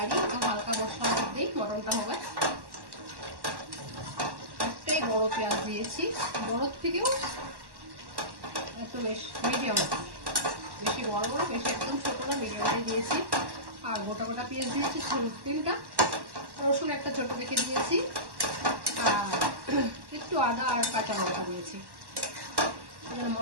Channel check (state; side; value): late; left; 1.1 ms